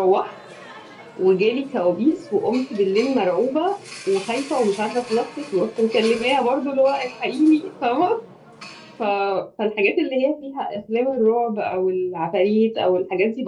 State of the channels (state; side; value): identical; both; correlation 1.00